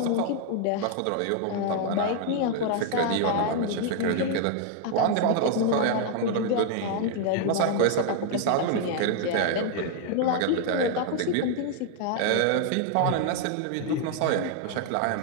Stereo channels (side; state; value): both; different; correlation 0.00